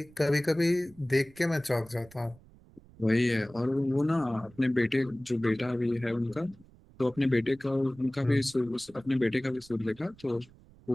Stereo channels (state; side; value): noise; right; rumble, 25 dB below the sound